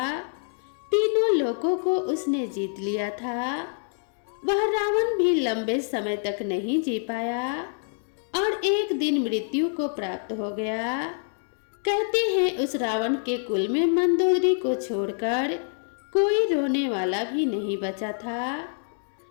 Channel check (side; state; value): right; silent; digital silence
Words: तीनों लोकों को उसने जीत लिया था। वह रावण भी लंबे समय तक नहीं जी पाया और एक दिन मृत्यु को प्राप्त हो गया। कहते हैं उस रावण के कुल में मंदोदरी को छोड़कर कोई रोने वाला भी नहीं बचा था।